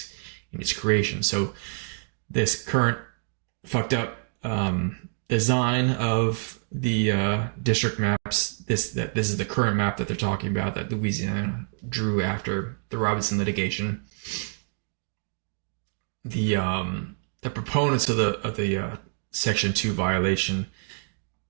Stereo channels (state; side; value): silent; left; 60 dB below the other